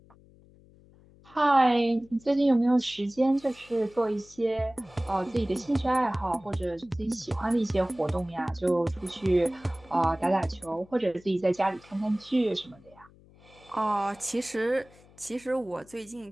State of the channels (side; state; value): left; noise; hum, 26 dB below the sound